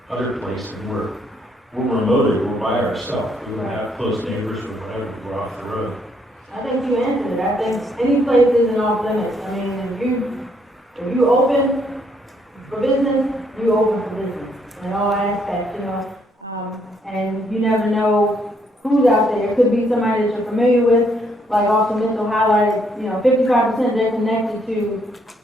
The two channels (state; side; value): normal; both; correlation 0.71